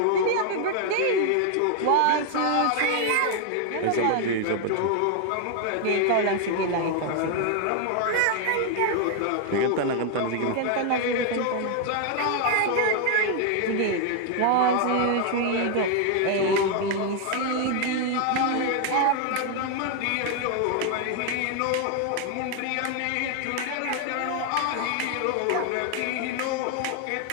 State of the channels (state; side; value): different; both; correlation 0.00